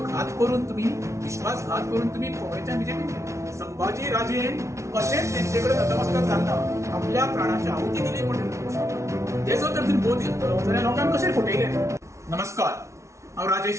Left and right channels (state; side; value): late; left; 0.14 ms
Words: करून तुम्ही विश्वासघात करून तुम्ही काँग्रेसच्या बीजेपीन गेले. संभाजी राजेन कशेंच तेंचेकडे नतमस्तक जालना आपल्या प्राणाची आहुती दिली पण तेजो तर तुवें बोध घेतलो जाल्यार लोकांक कशें फटयले. नमस्कार, हांव